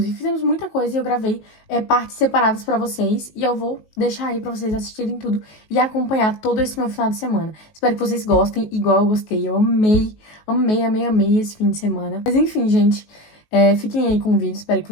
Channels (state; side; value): late; right; 19 ms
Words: fizemos muita coisa e eu gravei partes separadas pra vocês. E eu vou deixar aí pra vocês assistirem tudo e acompanhar todo esse meu final de semana. Espero que vocês gostem, igual eu gostei. Eu amei esse fim de semana. Mas enfim, gente, fiquem aí com o vídeo, espero que